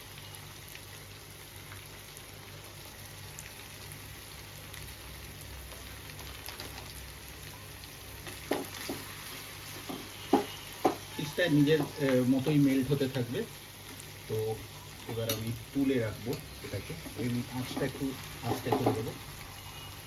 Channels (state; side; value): identical; both; correlation 1.00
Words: চিজটা নিজের মতোই মেল্ট হতে থাকবে। তো এবার আমি তুলে রাখবো এটাকে, এই আঁচটা একটু আস্তে করে দেবো।